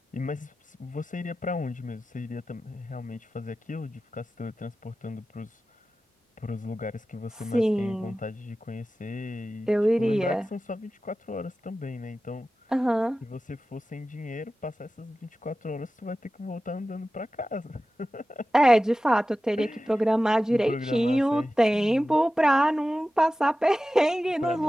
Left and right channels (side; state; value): both; normal; correlation 0.95